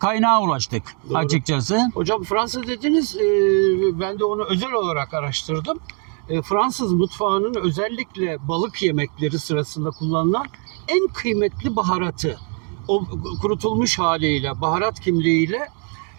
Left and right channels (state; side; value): quieter; left; 39.8 dB